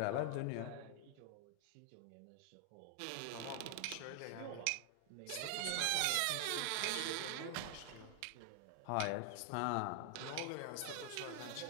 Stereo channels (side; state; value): both; different; correlation 0.00